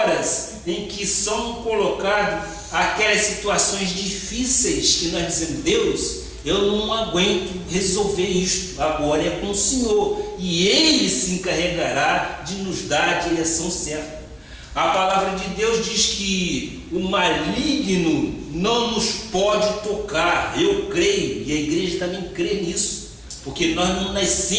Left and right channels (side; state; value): both; identical; correlation 1.00